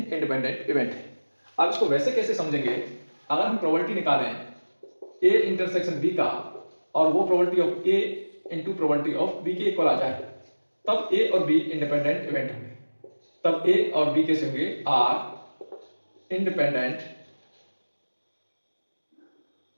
इंडिपेंडेंट इवेंट है। अब इसको वैसे कैसे समझेंगे, अगर हम प्रोबेबिलिटी निकालें ए इंटरसेक्शन बी का और वो probability of A into probability of B के इक्वल आ जाए, तब ए और बी इंडिपेंडेंट इवेंट होंगे। तब ए और बी कैसे होंगे, आर इंडिपेंडेंट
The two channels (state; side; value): inverted; both; correlation -1.00